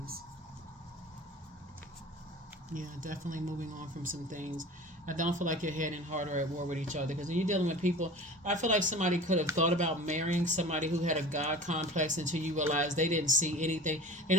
Yeah, definitely moving on from some things. I don't feel like your head and heart are at war with each other, because when you're dealing with people, I feel like somebody could have thought about marrying somebody who had a God complex until you realize they didn't see anything. They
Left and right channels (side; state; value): both; normal; correlation 0.38